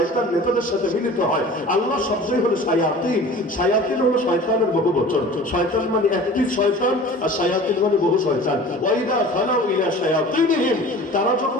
নেতাদের সাথে মিলিত হয়। আল্লাহ শব্দই হলো শায়াতিন, শায়াতিন হলো শয়তানের বহুবচন। শয়তান মানে একটি শয়তান, আর শায়াতিন মানে বহু শয়তান। ওয়াইদা খালাউ ইলা শায়াতিনহিম, তারা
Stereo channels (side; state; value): both; normal; correlation 0.41